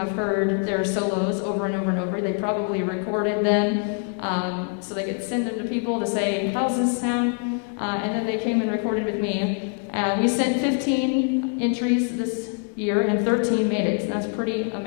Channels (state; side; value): quieter; right; 39.5 dB